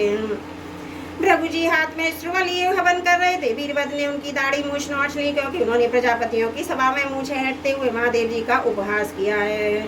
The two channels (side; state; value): both; identical; correlation 1.00